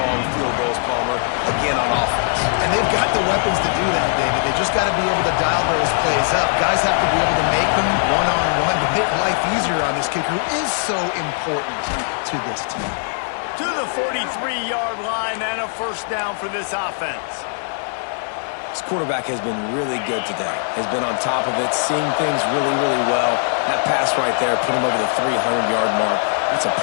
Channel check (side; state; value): right; silent; 56 dB below the other